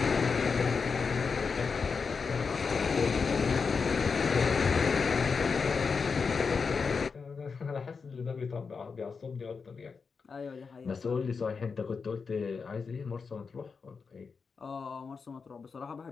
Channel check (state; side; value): quieter; right; 5.2 dB